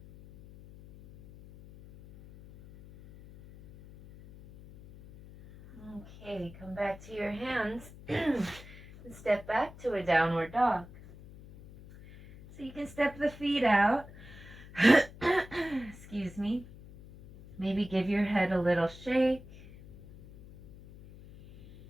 Okay, come back to your hands and step back to a downward dog. So you can step the feet out. Excuse me. Maybe give your head a little shake.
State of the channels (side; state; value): left; noise; hum, 19 dB below the sound